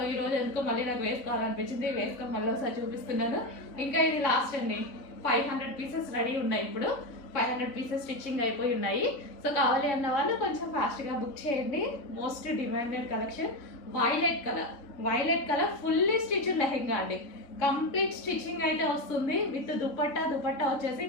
ఈ రోజు ఎందుకో మళ్ళీ నాకు వేసుకోవాలనిపించింది, వేసుకొని మళ్ళీ ఒకసారి చూపిస్తున్నాను. ఇంకా ఇది లాస్ట్ అండి. 500 పీసెస్ రెడీ ఉన్నాయి. ఇప్పుడు 500 పీసెస్ స్టిచ్చింగ్ అయిపోయి ఉన్నాయి. సో కావాలి అన్న వాళ్ళు కొంచెం ఫాస్ట్గా బుక్ చేయండి. Most demanded collection violet colour fully stitch lehenga అండి. కంప్లీట్ స్టిచ్చింగ్ అయితే వస్తుంది విత్ దుపట్టా వచ్చేసి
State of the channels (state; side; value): late; right; 3.4 ms